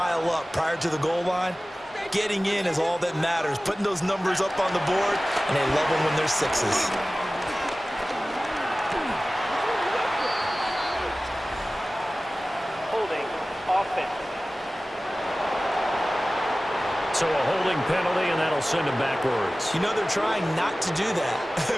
up prior to the goal line, getting in is all that matters. Putting those numbers up on the board, and they love them when they're 6s. Holding offense. So a holding penalty, and that'll send him backwards. They're trying not to do that. I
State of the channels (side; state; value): both; normal; correlation 0.97